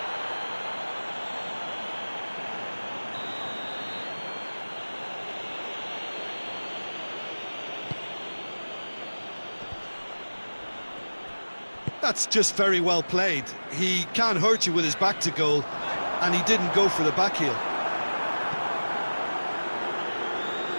That's just very well played. He can't hurt you with his back to goal, and he didn't go for the back heel.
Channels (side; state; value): both; inverted; correlation -1.00